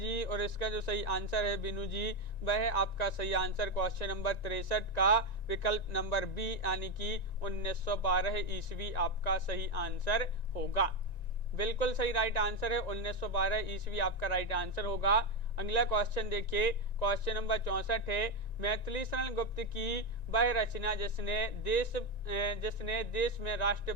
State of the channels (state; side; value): late; right; 1.9 ms